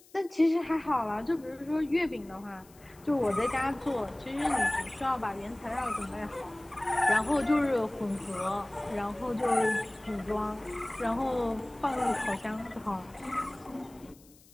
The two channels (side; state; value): left; noise; hiss, 26 dB below the sound